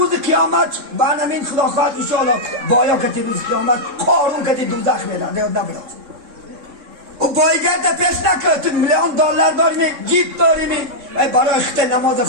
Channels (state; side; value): late; left; 3.6 ms